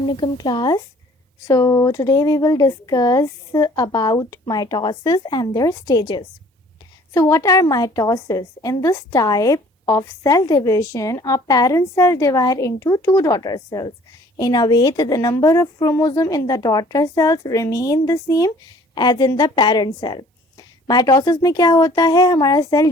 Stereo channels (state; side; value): normal; both; correlation 0.54